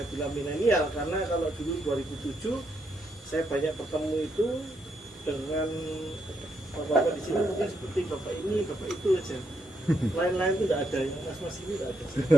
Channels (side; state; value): both; normal; correlation 0.78